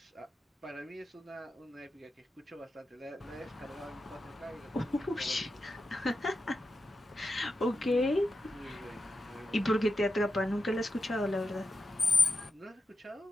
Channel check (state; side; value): normal; both; correlation 0.89